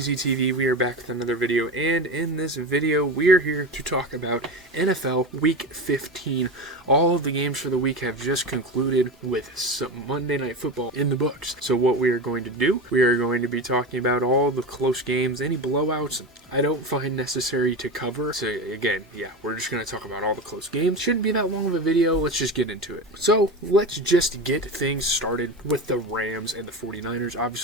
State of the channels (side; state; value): both; normal; correlation 0.23